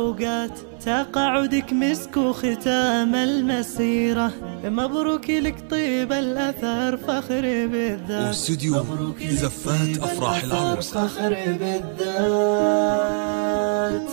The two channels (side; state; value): left; silent; digital silence